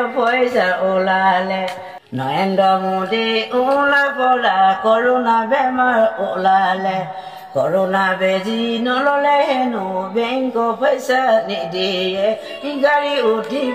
পইচা ওলালে নৰেন্দ্ৰ মোদী ওলা পৰা কৰোণা বেমাৰ ওলালে কৰোণা বেজি নললে হেনো বেংক পইচা নিদিয়ে গাড়ী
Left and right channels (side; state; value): both; identical; correlation 1.00